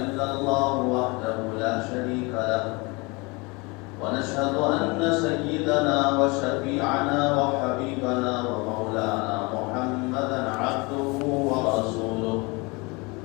الله وحده لا شريك له ونشهد أن سيدنا وشفيعنا وحبيبنا ومولانا محمدا عبده ورسوله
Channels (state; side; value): quieter; right; 27.1 dB